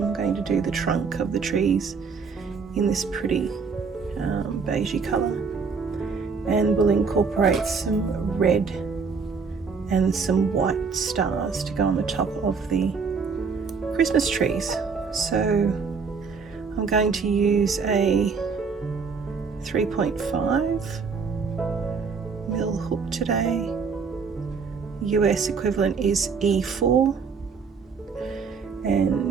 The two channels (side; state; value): left; quieter; 5.3 dB